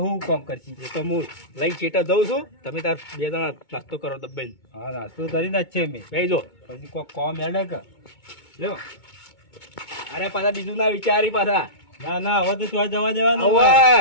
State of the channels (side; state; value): right; late; 2.2 ms